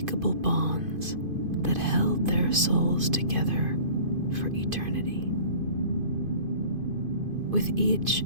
bonds that held their souls together for eternity. With each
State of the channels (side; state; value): left; late; 2.5 ms